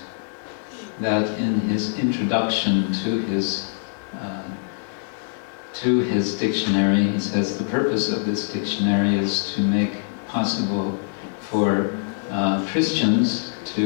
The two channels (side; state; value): right; silent; digital silence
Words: that in his introduction to his dictionary, he says the purpose of this dictionary is to make possible for Christians